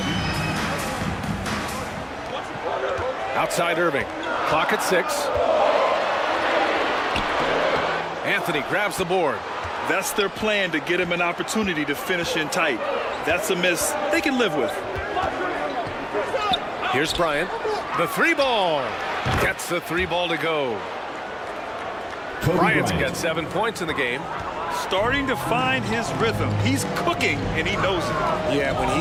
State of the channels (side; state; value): both; identical; correlation 1.00